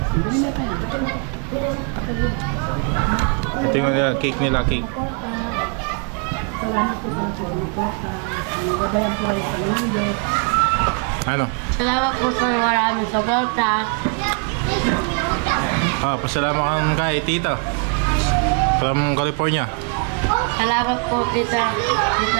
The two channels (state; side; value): quieter; left; 38.9 dB